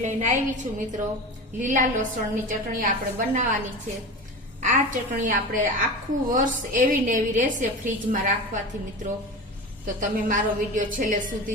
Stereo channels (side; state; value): both; normal; correlation 0.29